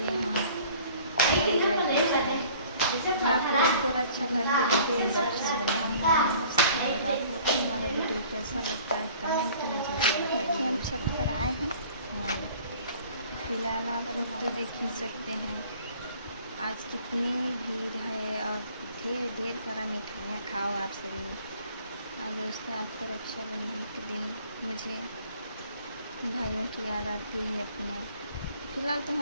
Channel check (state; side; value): inverted; both; correlation -0.51